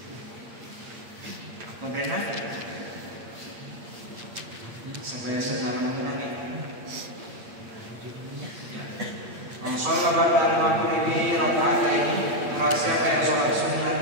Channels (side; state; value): left; late; 8.7 ms